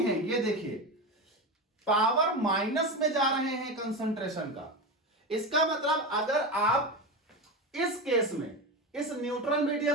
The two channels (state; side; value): normal; both; correlation 0.20